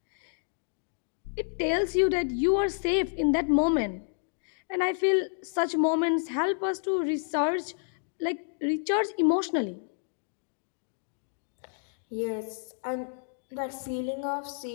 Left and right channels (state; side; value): silent; right; digital silence